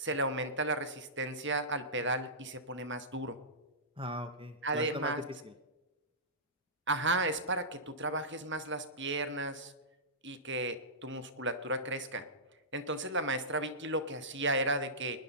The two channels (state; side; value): normal; both; correlation -0.18